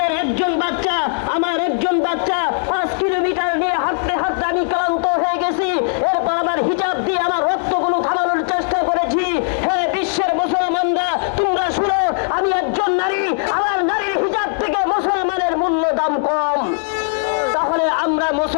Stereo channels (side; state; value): right; silent; digital silence